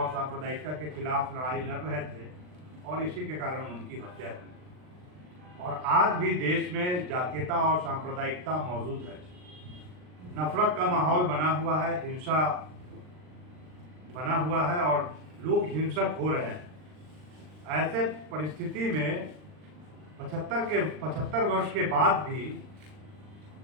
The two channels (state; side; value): late; left; 39 ms